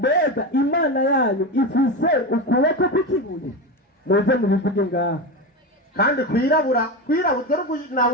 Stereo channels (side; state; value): both; normal; correlation 0.19